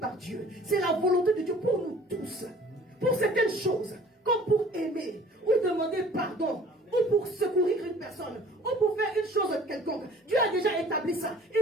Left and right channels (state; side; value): normal; both; correlation 0.50